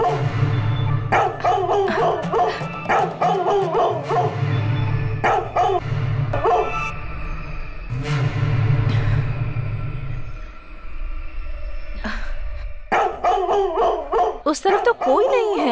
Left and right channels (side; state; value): both; identical; correlation 1.00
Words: उस तरफ तो कोई नहीं